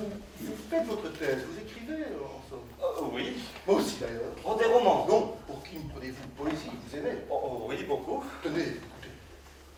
vous faites votre thèse, vous écrivez en somme. Oui. Moi aussi d'ailleurs. Oh, des romans. Non, pour qui me prenez-vous de poésie? Vous aimez? Oh, oui, beaucoup. Tenez, écoutez.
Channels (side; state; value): both; identical; correlation 1.00